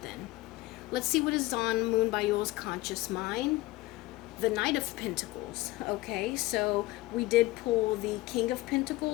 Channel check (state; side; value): quieter; right; 19.0 dB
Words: Let's see what is on Moonbyul's conscious mind. The Knight of Pentacles. Okay, so we did pull the King of